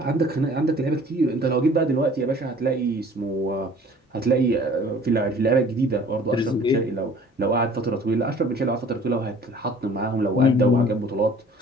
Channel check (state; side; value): normal; both; correlation 0.51